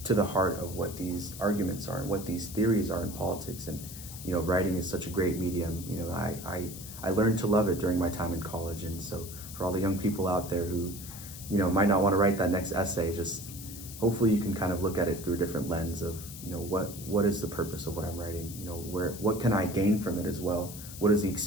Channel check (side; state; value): left; noise; hiss, 12 dB below the sound